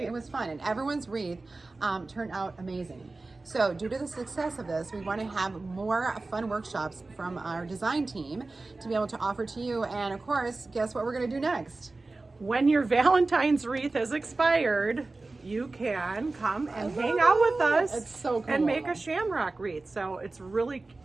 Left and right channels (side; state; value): left; quieter; 3.4 dB